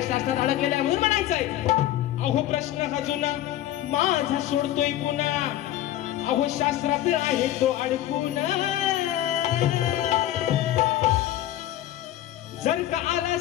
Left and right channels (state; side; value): quieter; right; 13.4 dB